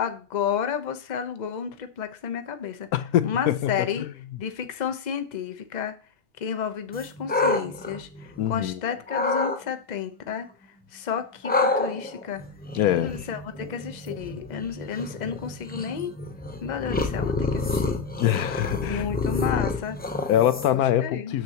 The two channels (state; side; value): quieter; right; 6.5 dB